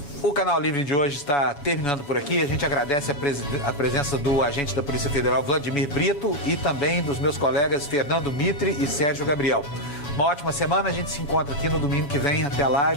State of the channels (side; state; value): right; late; 7.0 ms